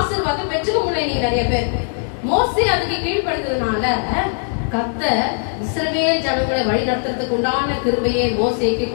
பெற்றுக்க முடியல. நீங்க நிறைய பேர் மோசே அதுக்கு கீழ்படுத்ததுனால கர்த்தர் இஸ்ரவேல் ஜனங்களை வழி நடத்துறதுக்கு உண்டான கிருபையை மோசேக்கு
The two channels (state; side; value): silent; right; digital silence